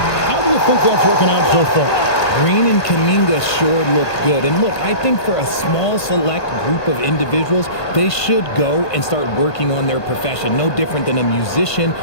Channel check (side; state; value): right; late; 1.5 ms